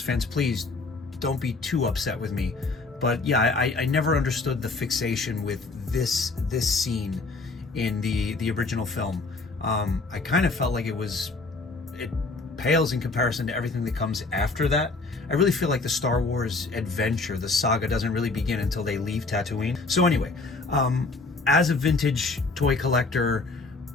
fans, please don't be too upset with me. But yeah, I never understood the fixation with this scene in the original film. I kind of felt like it pales in comparison to everything that comes after that. I really feel like the Star Wars adventure, the saga, doesn't really begin until they leave Tatooine. So anyway, as a vintage toy collector,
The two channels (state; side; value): quieter; right; 3.7 dB